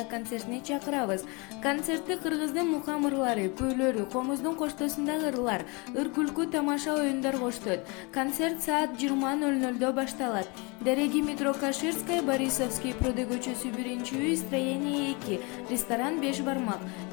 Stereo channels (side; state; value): right; quieter; 29.2 dB